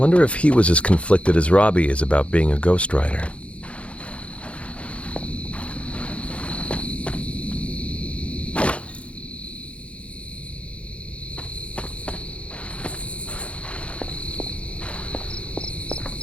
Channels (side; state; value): right; late; 0.062 ms